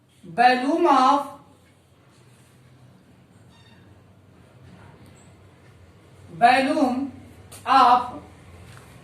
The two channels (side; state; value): both; identical; correlation 1.00